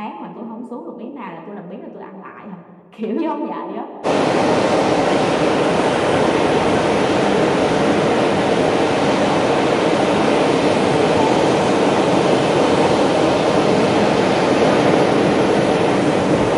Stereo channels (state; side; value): identical; both; correlation 1.00